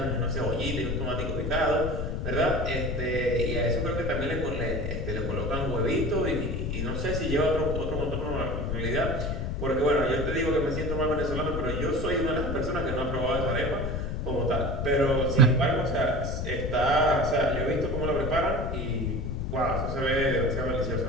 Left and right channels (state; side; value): noise; left; rumble, 3 dB below the sound